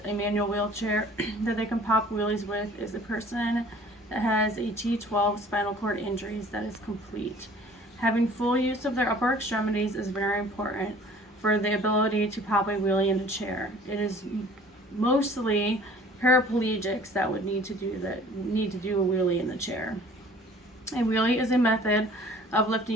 a manual wheelchair that they can pop wheelies with is a person that has a T12 spinal cord injuries that is complete. Having full use of their upper extremities is very important for the ability to pop a wheelie in a chair. It is mostly paraplegics that would need to do a wheelie in the chair. A wheelie is a method of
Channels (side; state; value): both; normal; correlation 0.50